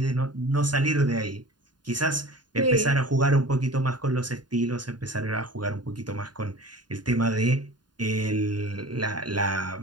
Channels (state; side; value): late; left; 0.70 ms